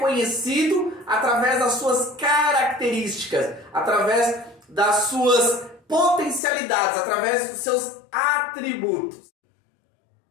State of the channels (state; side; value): drops out; right; at 6.4 s